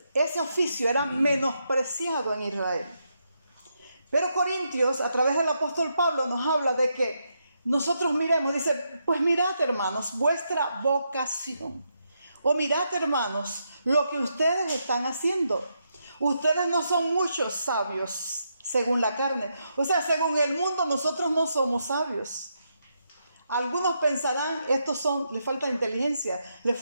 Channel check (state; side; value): inverted; both; correlation -0.81